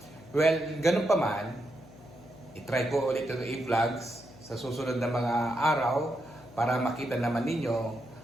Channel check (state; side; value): noise; left; hum, 21 dB below the sound